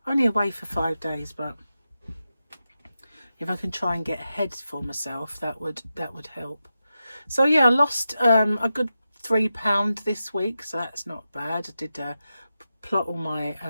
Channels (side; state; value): both; inverted; correlation -0.90